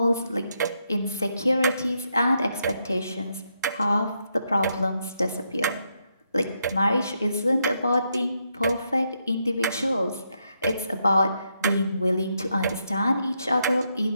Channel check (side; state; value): both; inverted; correlation -0.79